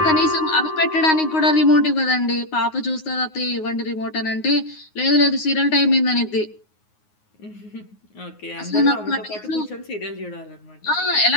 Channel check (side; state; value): right; late; 9.5 ms